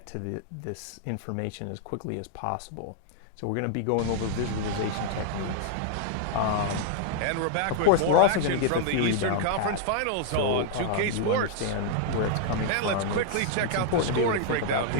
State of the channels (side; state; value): both; different; correlation -0.01